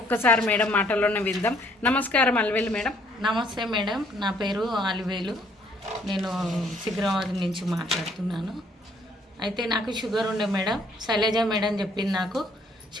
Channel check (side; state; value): both; normal; correlation 0.64